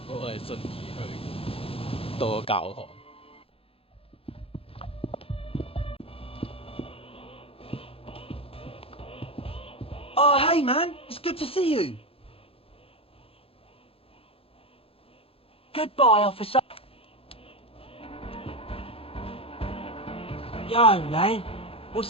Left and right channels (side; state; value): right; late; 0.27 ms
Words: 我係順而去到個教堂。 Oh, hey, man. It's good to see you. Goodbye, officer. Yo, man.